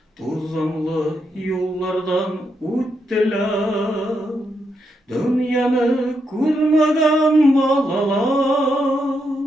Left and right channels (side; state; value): both; normal; correlation 0.81